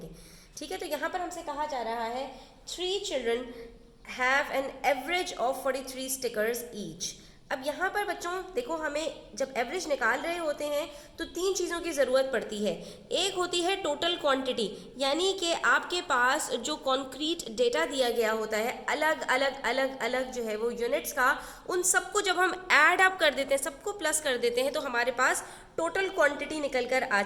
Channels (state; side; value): identical; both; correlation 1.00